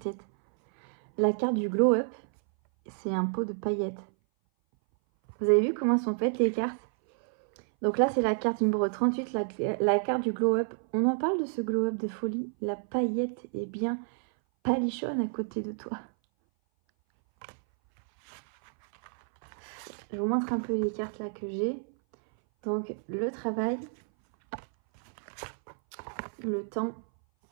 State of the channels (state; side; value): silent; left; 58 dB below the other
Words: La carte du glow up, c'est un pot de paillettes. Vous avez vu comment sont faites les cartes? Donc là, c'est la carte numéro 38, la carte du glow up. On en parle de ce glow up de folie. La paillette est bien palichonne à côté de toi. Je vous montre un peu les cartes là que j'ai. Donc le travail, le temps,